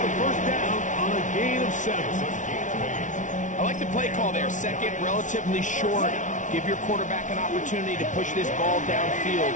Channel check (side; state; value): right; late; 0.37 ms